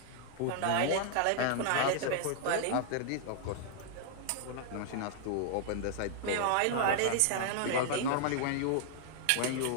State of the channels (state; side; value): different; both; correlation -0.01